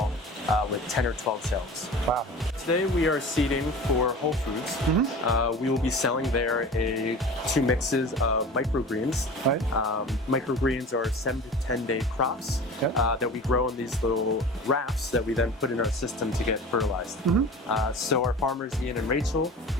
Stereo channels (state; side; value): normal; both; correlation 0.37